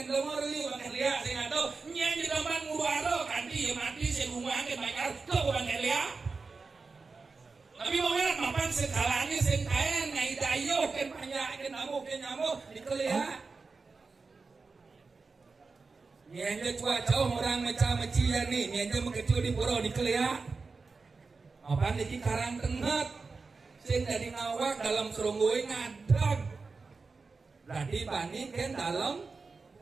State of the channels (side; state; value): left; quieter; 4.3 dB